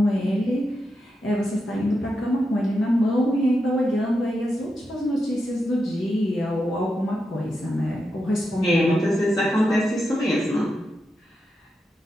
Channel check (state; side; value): normal; both; correlation 0.86